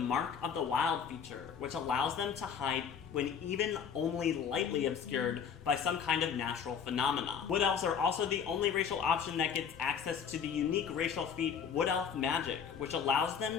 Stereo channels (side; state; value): right; quieter; 7.2 dB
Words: of the Wild feature, which allows them to hide when even only lightly obscured by some kind of natural phenomena. Wood Elves are also the only racial option that gets access to the unique racial feat Wood Elf Magic, which allows